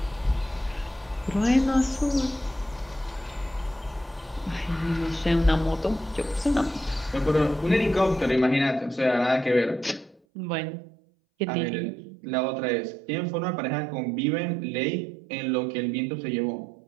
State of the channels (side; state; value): left; drops out; at 10.2 s